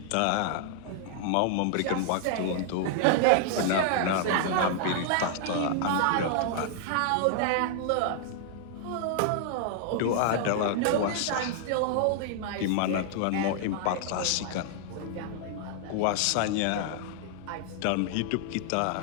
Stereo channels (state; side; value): different; both; correlation -0.01